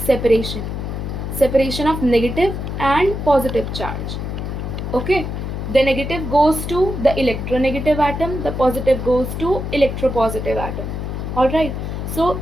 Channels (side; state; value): left; noise; hum, 5 dB below the sound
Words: Separation of negative and positive charge. Okay, the negative goes to the electronegative atom, the positive goes to electropositive atom. Alright, so